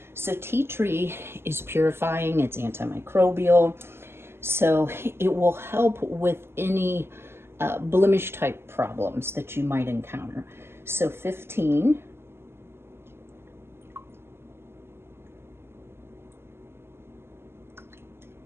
So tea tree is purifying, it's antimicrobial, so it will help with any blemish type problems that you might encounter. So 15.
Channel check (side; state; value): left; late; 0.12 ms